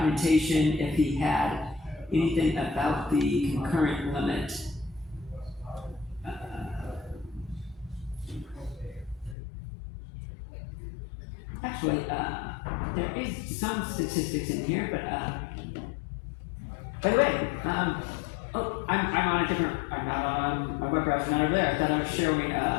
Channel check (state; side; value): drops out; right; at 9.3 s